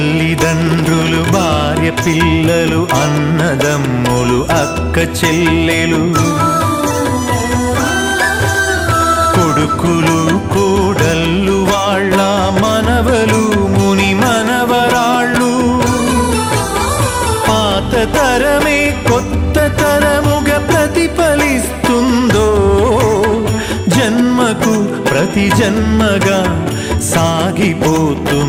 భార్య పిల్లలు, అన్నదమ్ములు, అక్క చెల్లెలు. కొడుకులు కోడళ్ళు వాళ్ళ మనవలు ముని మనవరాళ్ళు పాత తరమే కొత్త తరముగా ప్రతిఫలిస్తుందో జన్మకు ప్రతి జన్మగా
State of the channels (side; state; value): both; identical; correlation 1.00